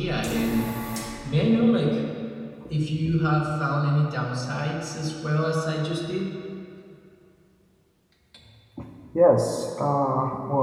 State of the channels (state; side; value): identical; both; correlation 1.00